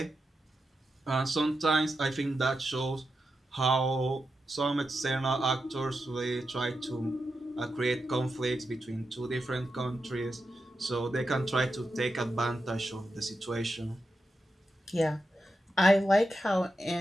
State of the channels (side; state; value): both; normal; correlation 0.88